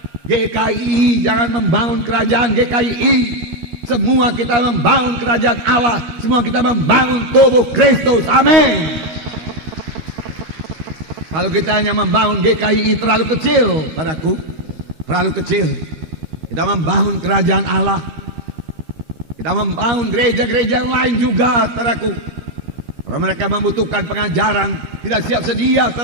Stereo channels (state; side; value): late; left; 13 ms